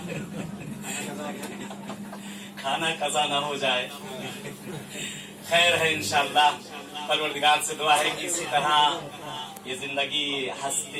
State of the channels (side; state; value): both; identical; correlation 1.00